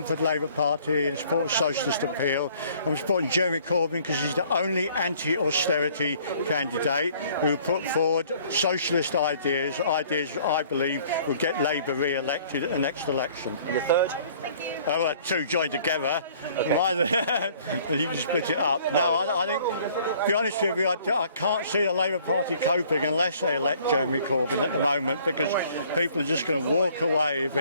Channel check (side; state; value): both; inverted; correlation -0.56